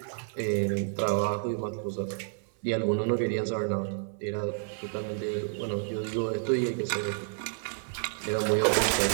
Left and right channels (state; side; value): silent; left; 58 dB below the other